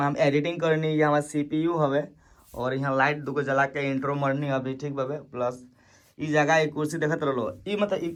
एडिटिंग करनी है, हमार सीपीयू हवे और यहाँ लाइट दुगो जला के इंट्रो मरनी अभी ठीक बावे। प्लस ई जगह एक कुर्सी देखत रहो, ई मतलब ई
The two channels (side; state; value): both; identical; correlation 1.00